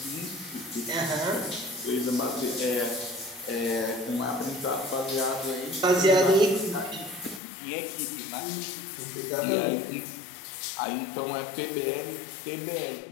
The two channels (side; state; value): right; drops out; at 7.4 s